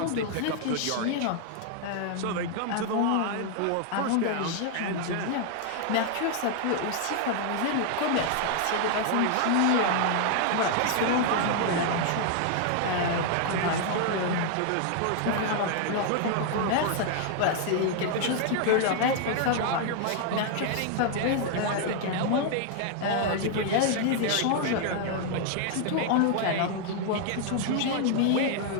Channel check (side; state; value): both; different; correlation 0.00